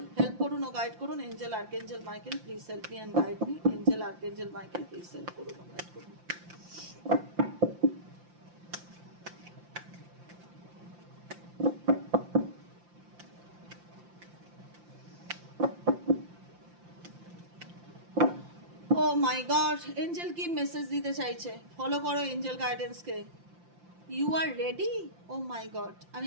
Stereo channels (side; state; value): left; late; 5.8 ms